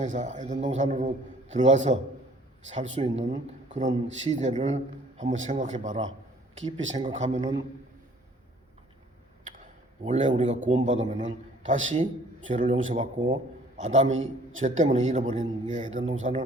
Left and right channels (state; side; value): normal; both; correlation 0.56